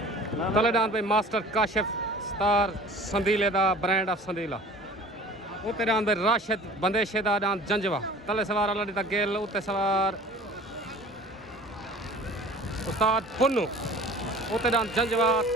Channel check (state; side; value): normal; both; correlation 0.44